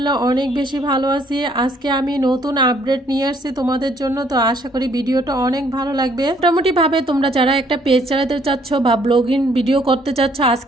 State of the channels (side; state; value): both; normal; correlation 0.65